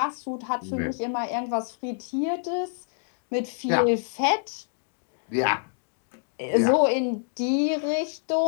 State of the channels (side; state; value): right; silent; digital silence